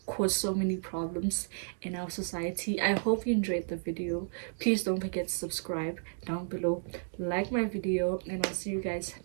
caused so many problems in our society. I hope you enjoyed the video. Please don't forget to subscribe down below, like my video, and I'll see you guys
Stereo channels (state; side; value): silent; left; digital silence